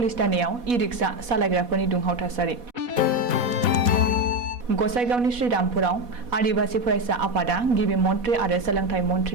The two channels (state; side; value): late; left; 4.1 ms